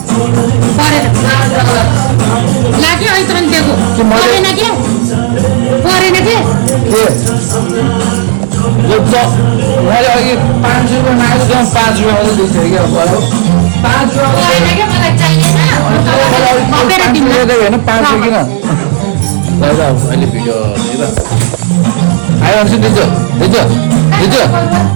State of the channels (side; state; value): left; silent; digital silence